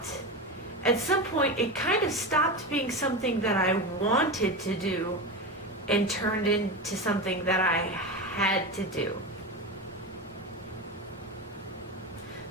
at some point. It kind of stopped being something that I wanted to do and turned into something that I had to do.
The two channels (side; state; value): both; normal; correlation 0.21